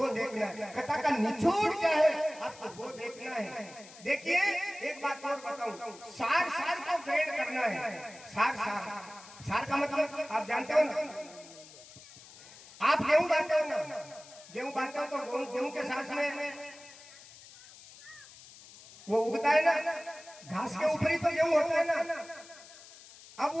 देखना है, कथा का निचोड़ क्या है आपको वो देखना है। देखिए एक बात और बताऊं, सार को ग्रेड करना है। सार का मतलब आप जानते हो ना, आप गेहूं बांटते हो ना, गेहूं बांटते हो तो गेहूं के साथ में वो उगता है ना, घास के ऊपर ही तो गेहूं होता है ना। अब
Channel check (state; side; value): noise; left; hiss, 19 dB below the sound